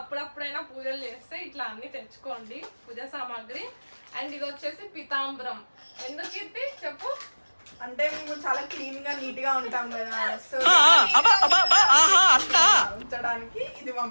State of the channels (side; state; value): both; inverted; correlation -1.00